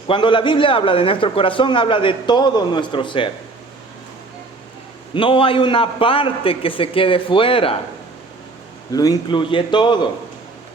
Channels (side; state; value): left; quieter; 3.4 dB